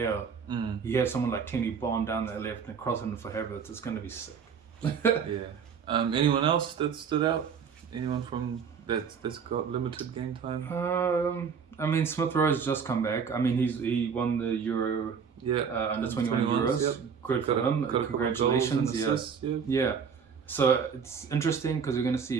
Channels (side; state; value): left; quieter; 6.5 dB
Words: You have someone like Tierney bomb down that left and crossing for Havertz. It's going to be sick. Anyone else that stood out? Anyone from that's got limited game time? I mean, Smith Rowe's just come back. I mean, he won the Euro under 21 Euros. Yep. Good for him. Congratulations. Yeah. So it's interesting because we're going to